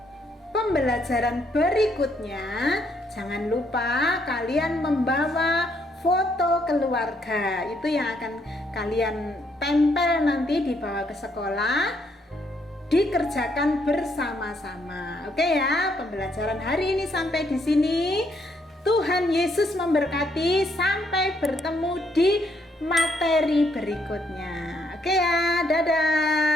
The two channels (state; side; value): normal; both; correlation 0.72